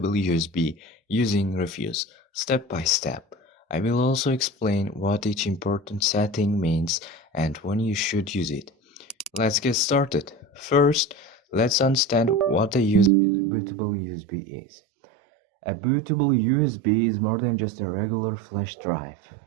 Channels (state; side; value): drops out; left; at 13.1 s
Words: USB using Rufus, step by step. I will also explain what each important setting means and when you should use it. Let's get started. First, let's understand what a bootable USB is. A bootable USB is more than just a regular flash drive.